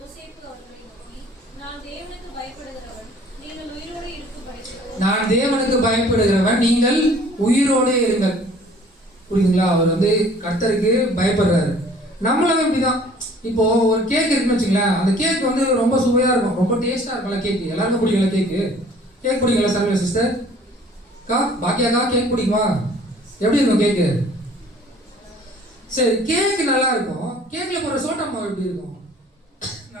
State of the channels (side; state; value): both; normal; correlation 0.53